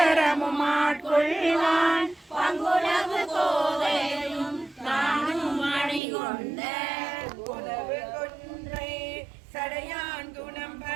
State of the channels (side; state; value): left; drops out; at 6.0 s